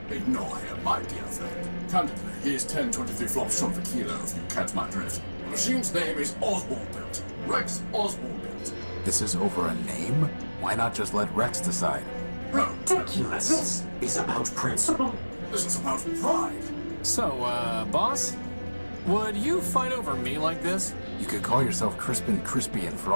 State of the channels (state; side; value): inverted; both; correlation -1.00